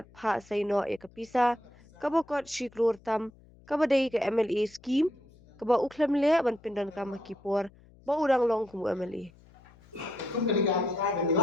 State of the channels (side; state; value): left; noise; hum, 26 dB below the sound